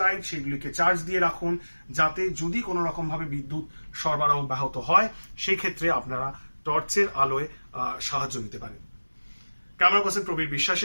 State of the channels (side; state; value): both; inverted; correlation -1.00